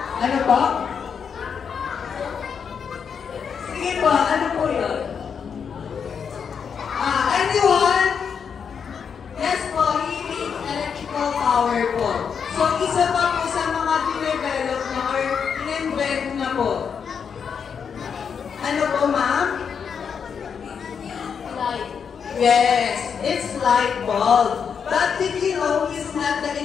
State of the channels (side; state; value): right; quieter; 6.7 dB